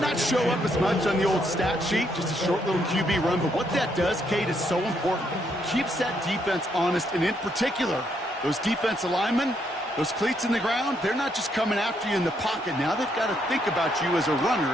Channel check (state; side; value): normal; both; correlation 0.74